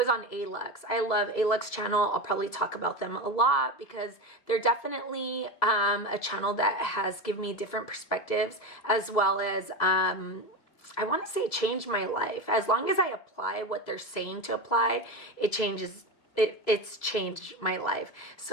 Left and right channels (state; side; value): late; right; 2.0 ms